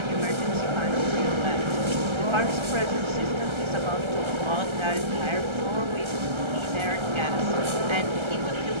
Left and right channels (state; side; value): late; left; 1.3 ms